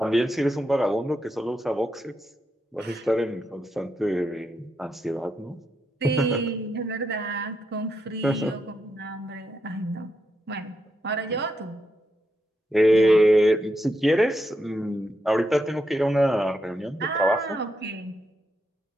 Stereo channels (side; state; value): both; normal; correlation 0.83